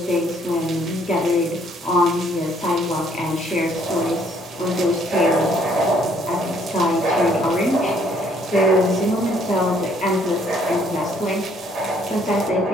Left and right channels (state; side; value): normal; both; correlation 0.64